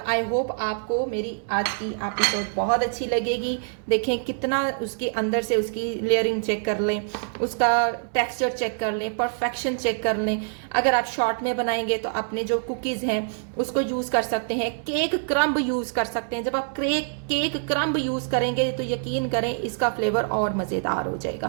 आई होप आपको मेरी आज की एपिसोड बहुत अच्छी लगेगी। देखें कितना उसके अंदर से उसकी लेयरिंग चेक कर लें, उसका टेक्सचर चेक कर लें, परफेक्शन चेक कर लें। अगर आप शॉर्ट में बनाएंगे तो अपने जो कुकीज़ हैं उसको यूज़ कर सकते हैं, केक क्रम्ब यूज़ कर सकते हैं। जब आप केक क्रम्ब यूज़ करेंगे तो यकीन करें इसका फ्लेवर और मज़ेदार हो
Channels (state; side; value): silent; left; digital silence